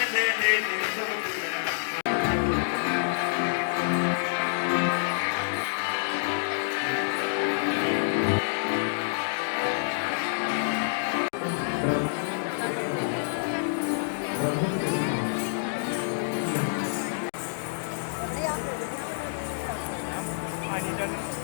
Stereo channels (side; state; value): right; silent; digital silence